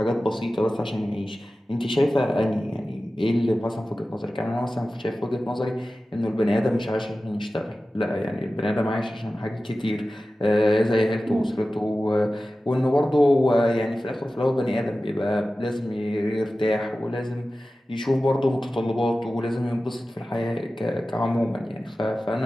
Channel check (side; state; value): both; normal; correlation 0.95